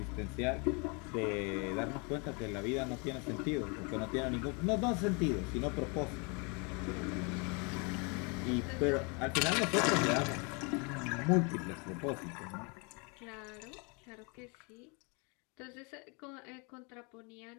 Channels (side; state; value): right; quieter; 32.3 dB